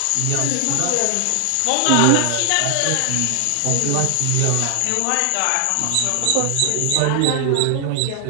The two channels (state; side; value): different; both; correlation 0.00